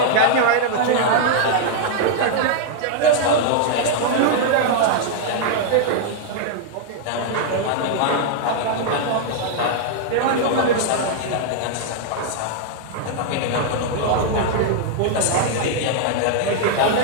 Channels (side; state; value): both; different; correlation -0.01